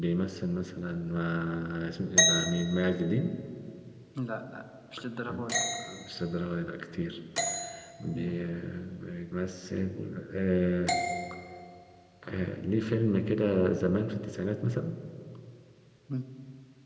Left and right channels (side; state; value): both; identical; correlation 1.00